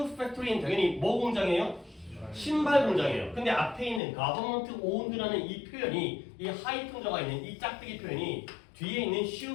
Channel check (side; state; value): right; drops out; at 4.0 s